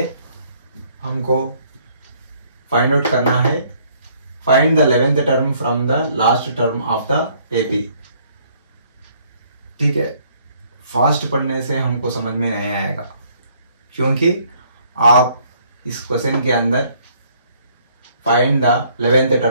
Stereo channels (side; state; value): both; inverted; correlation -0.63